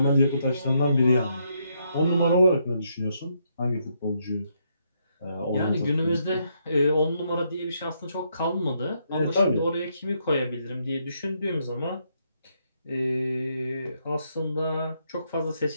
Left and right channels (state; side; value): inverted; both; correlation -0.76